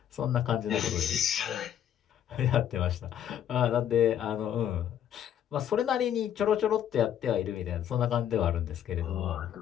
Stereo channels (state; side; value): quieter; right; 10.1 dB